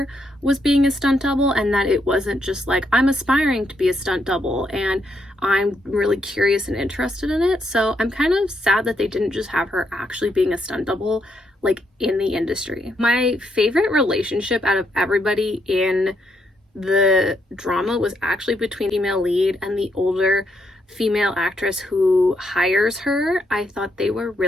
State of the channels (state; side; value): normal; both; correlation 0.77